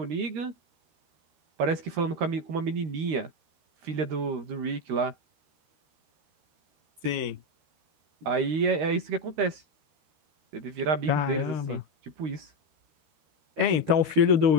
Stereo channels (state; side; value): late; left; 13 ms